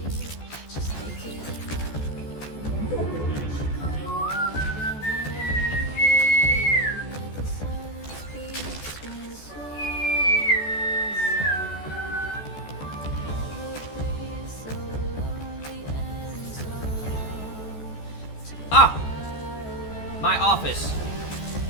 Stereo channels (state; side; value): late; right; 14 ms